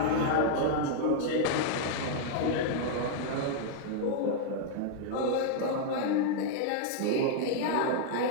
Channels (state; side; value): different; both; correlation -0.01